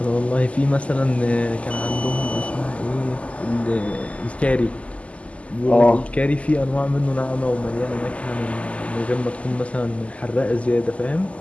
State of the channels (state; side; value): late; right; 0.064 ms